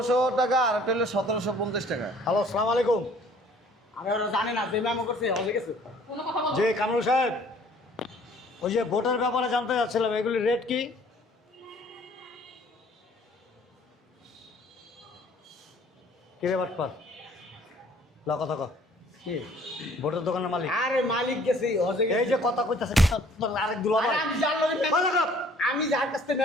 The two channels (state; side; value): normal; both; correlation 0.56